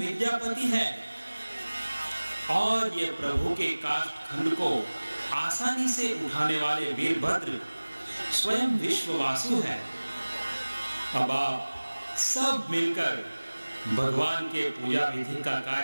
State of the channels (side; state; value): both; inverted; correlation -1.00